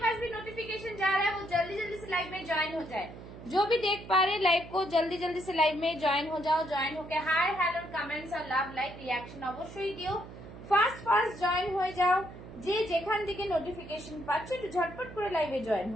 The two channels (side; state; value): right; noise; hum, 15 dB below the sound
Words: पास भी नोटिफिकेशन जा रहा है वो जल्दी जल्दी से लाइव में ज्वाइन हो जाए। जो भी देख पा रहे लाइव को जल्दी जल्दी से लाइव में ज्वाइन हो जाओ। ज्वाइन होके हाय हेलो कमेंट्स और লাভ লাইক রিঅ্যাকশন অবশ্যই দিও। ফার্স্ট ফার্স্ট জয়েন হয়ে যাও। যে যেখান থেকে নোটিফিকেশন পাচ্ছ একটু ঝটপট করে লাইভে জয়েন